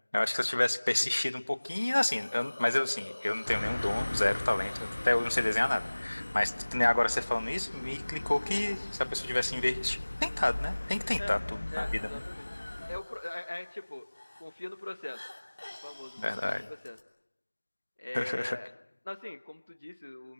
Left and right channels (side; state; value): both; inverted; correlation -1.00